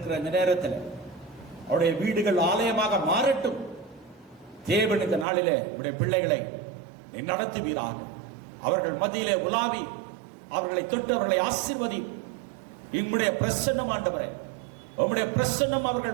இந்த நேரத்தில் அவருடைய வீடுகள் ஆலயமாக மாறட்டும். தேவன் இந்த நாளிலே உடைய பிள்ளைகளை நடத்துவீராக. அவர்கள் மத்தியிலே உலாவி அவர்களை தொட்டு அவர்களை ஆசீர்வதி. உம்முடைய பிரசன்னம் ஆண்டவரே, உம்முடைய பிரசன்னம்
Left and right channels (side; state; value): left; drops out; at 5.2 s